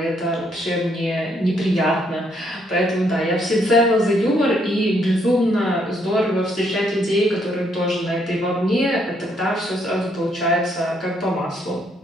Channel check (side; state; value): both; normal; correlation 0.71